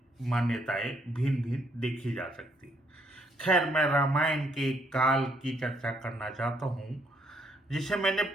मान्यताएं भिन्न भिन्न देखी जा सकती। खैर, मैं रामायण के काल की चर्चा करना चाहता हूँ जिसे मैंने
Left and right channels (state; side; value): normal; both; correlation 0.70